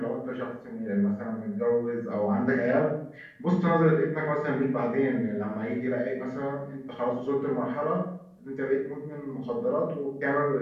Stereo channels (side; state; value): both; identical; correlation 1.00